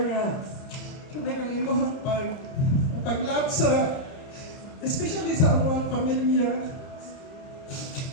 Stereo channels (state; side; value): late; right; 30 ms